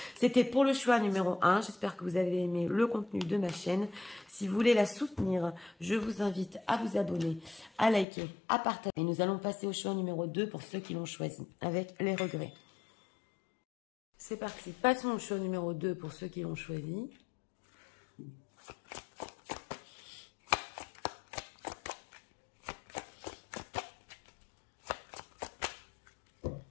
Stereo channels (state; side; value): drops out; right; at 8.1 s